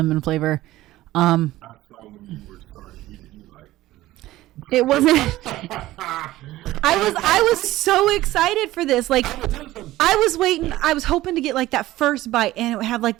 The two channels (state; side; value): quieter; left; 16.2 dB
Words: flavor. I saw when you were starting eating, you like. It wasn't. I was so excited for this. Like, I was waiting. I was hoping to get like that first bite, and it would have like